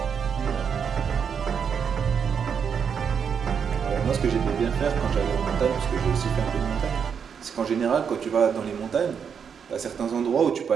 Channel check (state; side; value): quieter; left; 7.0 dB